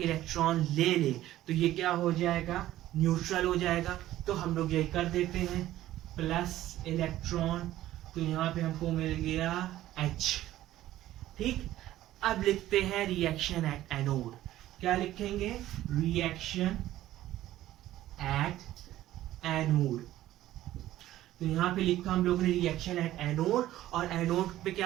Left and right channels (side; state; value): left; quieter; 14.2 dB